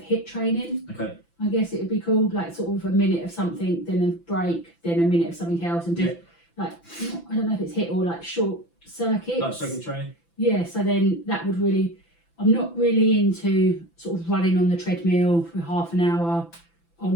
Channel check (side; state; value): right; late; 5.9 ms